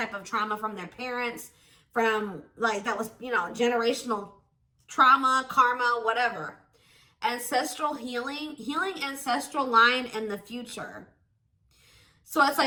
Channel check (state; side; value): identical; both; correlation 1.00